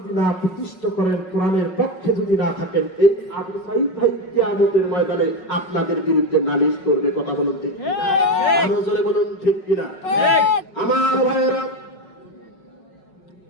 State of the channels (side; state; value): right; late; 5.4 ms